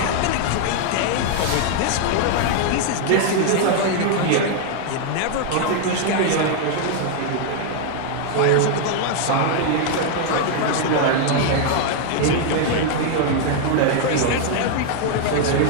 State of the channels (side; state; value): both; different; correlation 0.00